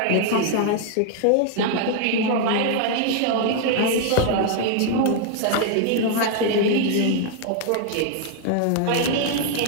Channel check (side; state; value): both; different; correlation 0.00